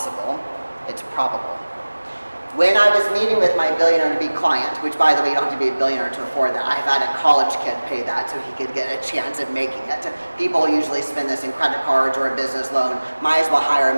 it's probable. When I was meeting with my billionaire-to-be client, which by the way, you don't have to be a billionaire to afford that. I've had a college kid pay that so he could get a chance at making it. People usually spend this in credit cards or a business loan. Might as well hire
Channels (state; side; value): inverted; both; correlation -1.00